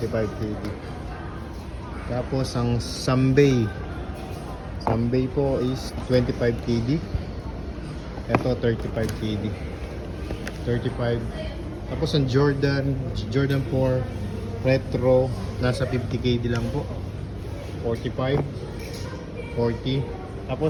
Tapos ang Sambay po is 25KD. Ito 35KD. 35. Tapos ang Jordan 4 Retro nasa 50KD lang po. 45, 40.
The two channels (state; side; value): identical; both; correlation 1.00